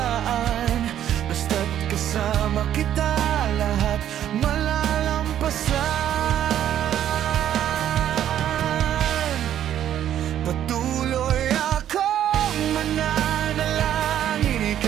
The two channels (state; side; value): quieter; left; 10.9 dB